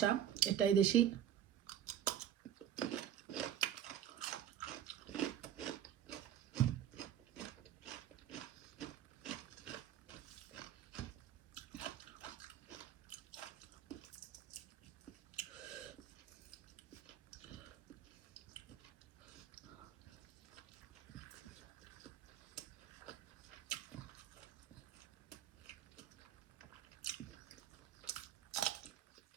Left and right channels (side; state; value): left; quieter; 10.2 dB